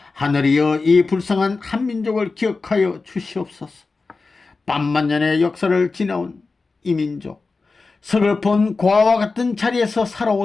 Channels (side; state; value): right; quieter; 4.0 dB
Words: 하늘이여, 이 불쌍한 한민족을 기억하여 주시옵소서. 반만년의 역사를 지나온 이 민족, 서글픈 고아와 같은 자리에서